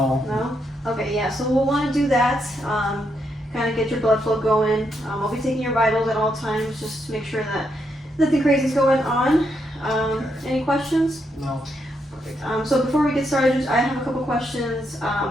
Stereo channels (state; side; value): normal; both; correlation 0.79